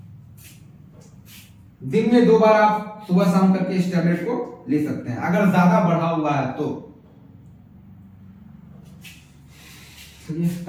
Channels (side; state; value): both; identical; correlation 1.00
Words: दिन में 2 बार आप सुबह शाम करके इस टैबलेट को ले सकते हैं अगर ज्यादा बढ़ा हुआ है तो। ये